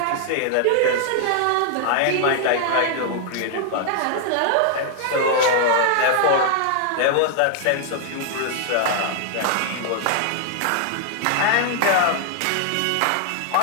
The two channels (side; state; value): both; different; correlation 0.00